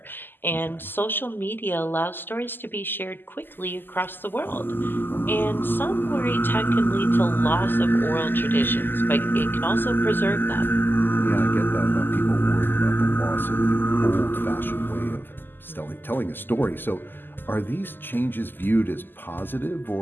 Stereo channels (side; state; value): right; late; 0.094 ms